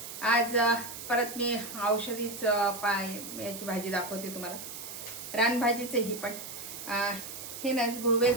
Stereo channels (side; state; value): right; noise; hiss, 10 dB below the sound